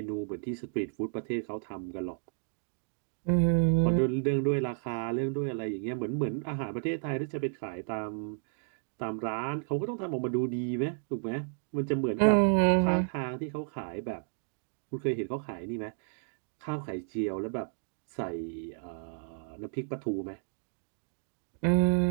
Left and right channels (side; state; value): left; silent; 56 dB below the other